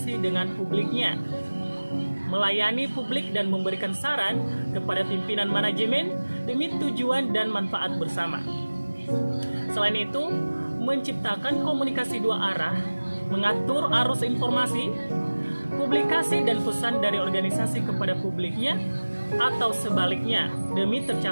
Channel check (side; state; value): both; inverted; correlation -1.00